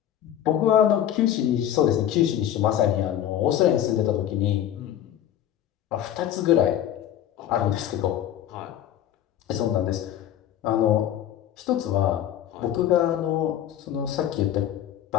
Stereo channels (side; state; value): right; quieter; 11.0 dB